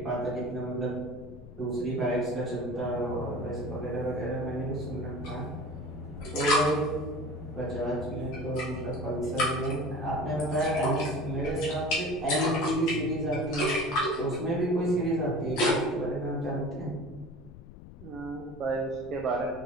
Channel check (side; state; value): left; noise; rumble, 17 dB below the sound